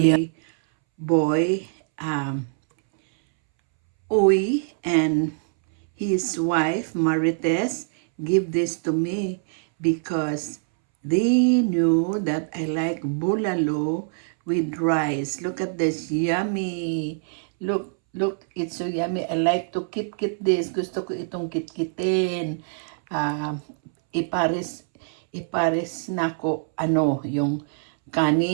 Boy, Uy, and his wife, Marites, give this to me because they knew that I like bulalo with rice. Look at this, yummy. Look, it's so yummy. I like to kit this. Gusto ko itong kitkitin. Uh, ipares, ipares na ko, yung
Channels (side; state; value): left; silent; 62 dB below the other